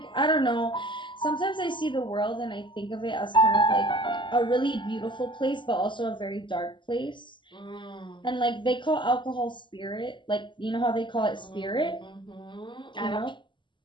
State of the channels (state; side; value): late; right; 0.23 ms